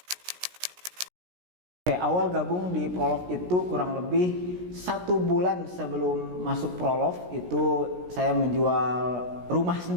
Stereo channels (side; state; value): left; late; 17 ms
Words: Oke, awal gabung di Prolog itu kurang lebih 1 bulan sebelum masuk Prolog itu saya menjual rumah